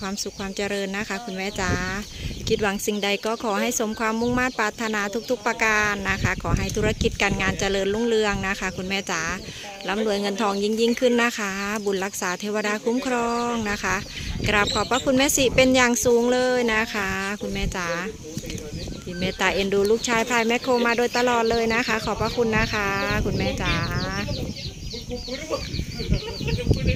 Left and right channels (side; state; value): both; identical; correlation 1.00